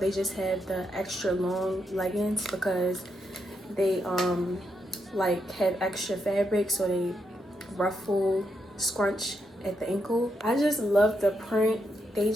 just have the extra long leggings because they like have extra fabric, so they ruffle, scrunch at the ankle. I just love the print. They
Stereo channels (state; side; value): normal; both; correlation 0.81